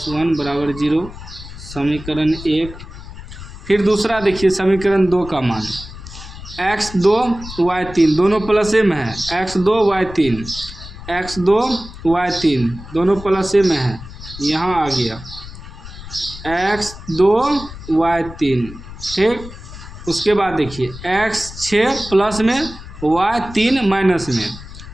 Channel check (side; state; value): left; noise; rumble, 14 dB below the sound